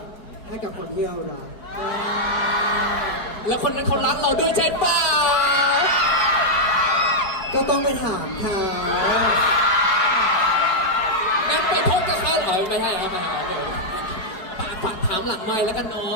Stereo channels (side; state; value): right; late; 4.7 ms